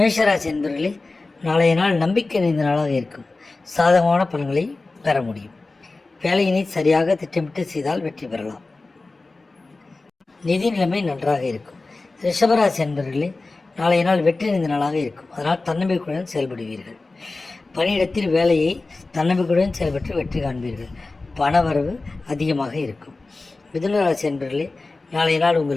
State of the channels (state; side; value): quieter; right; 3.4 dB